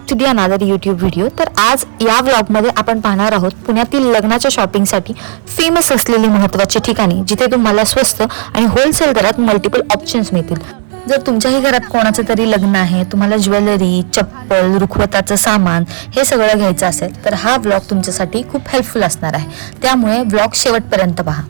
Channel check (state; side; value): silent; left; digital silence